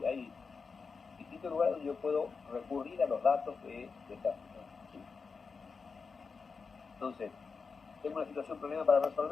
y hay distintos lugares donde yo puedo recurrir a los datos de esta situación. ¿Sí? Entonces, tengo una situación, problema para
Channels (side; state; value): right; quieter; 5.0 dB